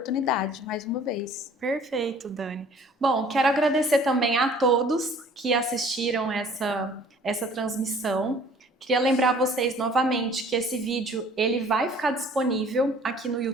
mais uma vez. Perfeito, Dani. Bom, quero agradecer também a todos que assistiram essa transmissão. Queria lembrar vocês novamente que esse vídeo ele vai ficar disponível aqui no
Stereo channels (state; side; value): normal; both; correlation 0.53